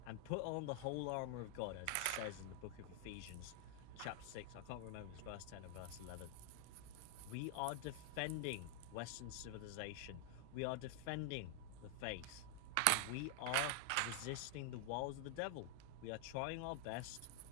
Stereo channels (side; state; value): both; different; correlation 0.00